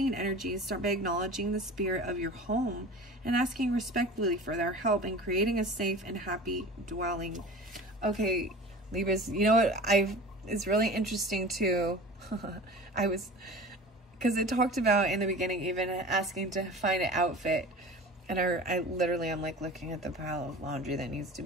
energies. Start by acknowledging the spirit of your home and asking respectfully for their help in creating a safe and happy dwelling. Okay, Libras, you know what? It's really interesting too. Because it talked about in the beginning even asking to find an outfit, and I literally am like looking at the pile of laundry that needs to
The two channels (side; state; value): both; normal; correlation 0.38